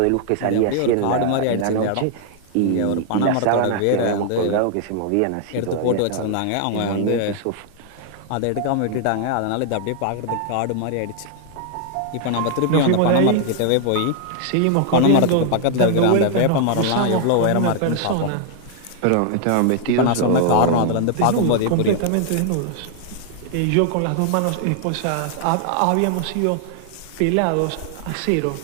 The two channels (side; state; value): both; different; correlation 0.00